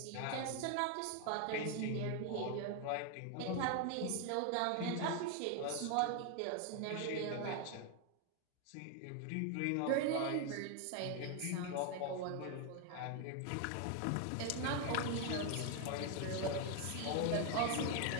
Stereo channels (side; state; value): both; different; correlation 0.01